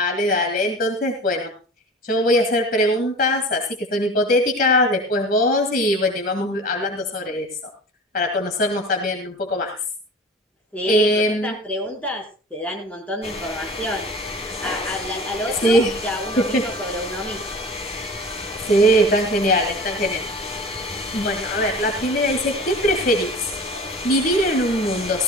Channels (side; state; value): both; normal; correlation 0.38